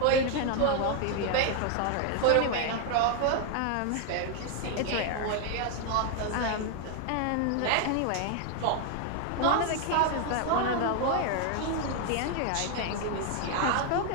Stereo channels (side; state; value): both; different; correlation 0.00